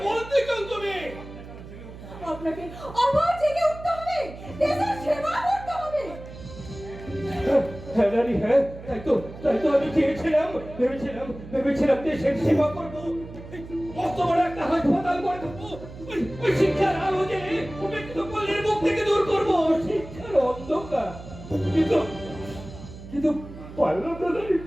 বলতে চাও তুমি? আপনাকে আবার জেগে উঠতে হবে, দেশের সেবা করতে হবে। হ্যাঁ রানী, হ্যাঁ, তাই তো আমি ভেবেছিলাম দেশের সেবা করবো, মস্ত বড় একটা হাসপাতাল করে দেবো, ওই শিক্ষার আলো জেলে উপেক্ষিত পল্লীর মুখ থেকে দূর করবো শিক্ষার অন্ধকার। কিন্তু পারলাম না রানী,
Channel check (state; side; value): noise; right; hum, 15 dB below the sound